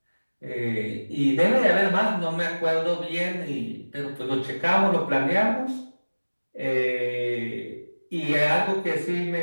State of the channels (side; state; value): both; inverted; correlation -1.00